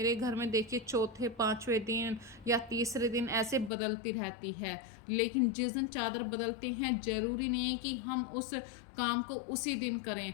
घर में देखिए चौथे 5वें दिन या तीसरे दिन ऐसे बदलती रहती है। लेकिन जिस दिन चादर बदलते हैं ज़रूरी नहीं है कि हम उस काम को उसी दिन करें।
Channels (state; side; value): drops out; right; at 3.7 s